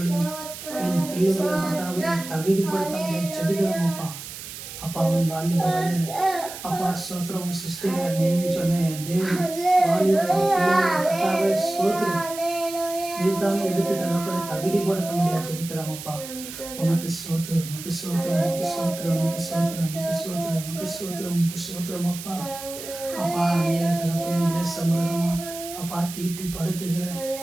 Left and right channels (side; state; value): right; noise; hiss, 11 dB below the sound